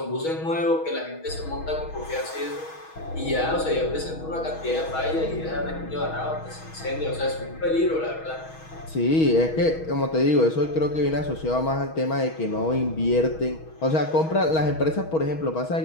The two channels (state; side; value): late; right; 6.3 ms